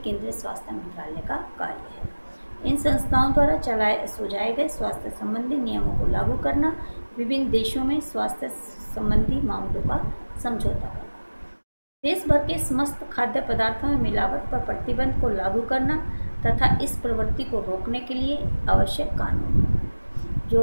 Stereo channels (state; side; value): inverted; both; correlation -1.00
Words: स्वास्थ्य मंत्रालय का कार्य है। इन संस्थाओं द्वारा सुझाए गए स्वास्थ्य संबंधी नियमों को लागू करना, विभिन्न देशों में स्वास्थ्य संबंधी मामलों का समझौता करना, देश भर के समस्त खाद्य पदार्थों में मिलावट पर प्रतिबंध को लागू करना तथा इस प्रवृत्ति को रोकने के लिए आवश्यक कानून,